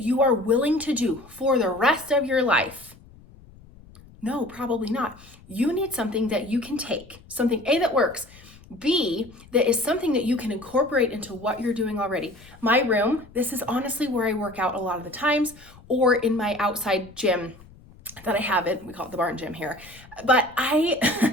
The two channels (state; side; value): noise; left; rumble, 23 dB below the sound